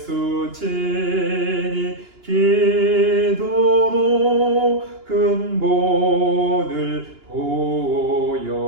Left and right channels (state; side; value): late; left; 2.9 ms